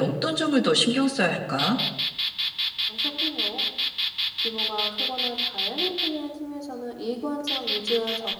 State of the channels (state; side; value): identical; both; correlation 1.00